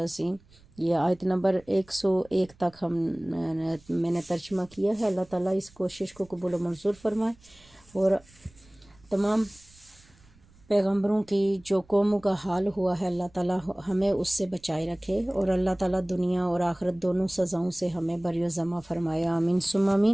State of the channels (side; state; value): right; noise; rumble, 28 dB below the sound